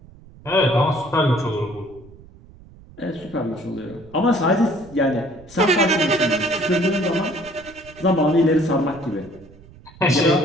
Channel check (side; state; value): right; noise; rumble, 22 dB below the sound